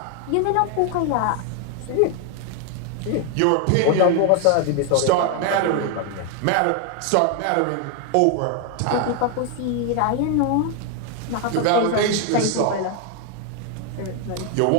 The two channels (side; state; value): both; different; correlation 0.01